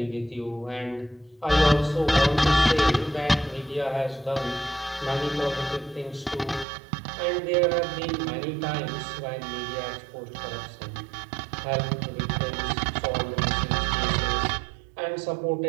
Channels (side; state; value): left; drops out; at 6.7 s